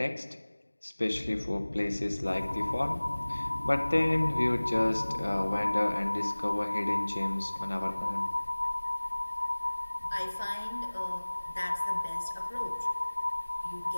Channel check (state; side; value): inverted; both; correlation -1.00